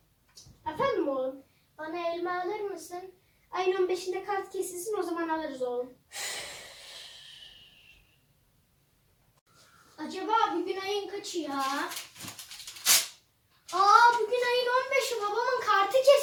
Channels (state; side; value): identical; both; correlation 1.00